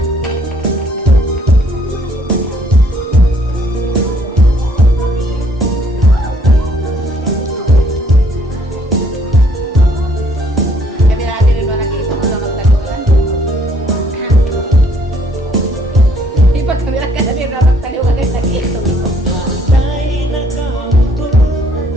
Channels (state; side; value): normal; both; correlation 0.64